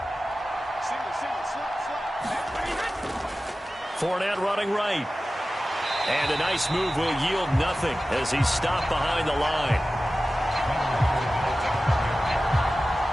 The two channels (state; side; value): normal; both; correlation 0.95